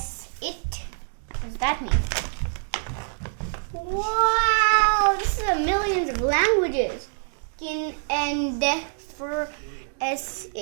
it. What does that mean? Wow, this is millions of languages. Chin and for S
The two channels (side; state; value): left; silent; digital silence